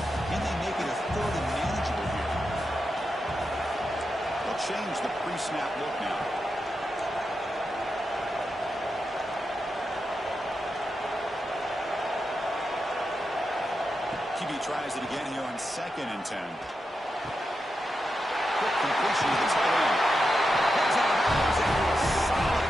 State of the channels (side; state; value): both; normal; correlation 0.88